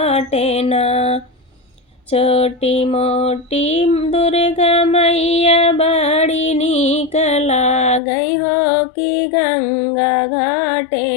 ना। छोटी मोटी दुर्गा मैया बाड़ी निकला गई हो कि गंगा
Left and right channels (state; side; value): drops out; right; at 8.0 s